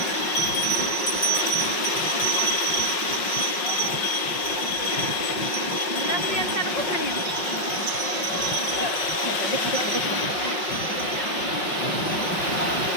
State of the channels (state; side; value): late; right; 5.5 ms